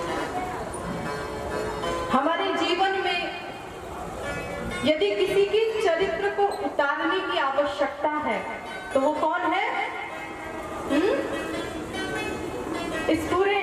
हमारे जीवन में यदि किसी के चरित्र को उतारने की आवश्यकता है तो वो कौन है? इस पूरे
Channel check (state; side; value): identical; both; correlation 1.00